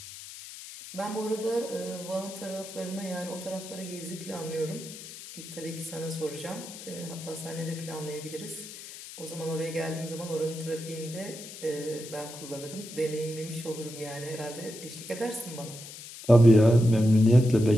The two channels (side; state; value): left; noise; hiss, 13 dB below the sound